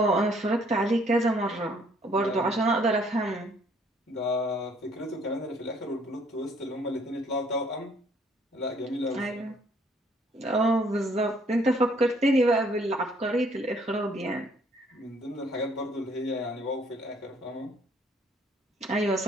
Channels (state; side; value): normal; both; correlation 0.63